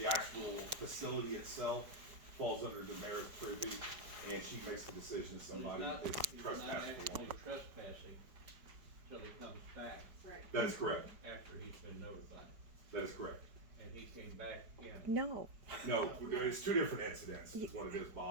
actual facility itself falls under the mayor's purview, and she makes the decision if somebody is He's not trespassing. actually trespassing till he comes back Right. That is correct. after he's been notified, That is correct. and he came back in. No, No, it's two different incidents, is what it is,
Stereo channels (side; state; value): left; late; 5.0 ms